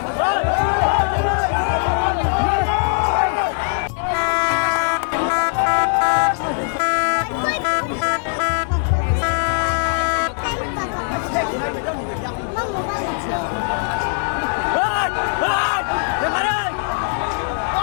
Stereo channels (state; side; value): silent; right; 66 dB below the other